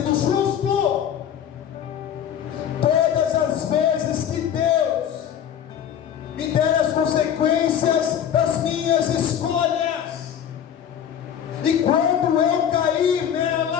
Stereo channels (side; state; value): right; quieter; 9.1 dB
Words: justo. Todas as vezes que Deus me der as consequências das minhas escolhas, e quando eu cair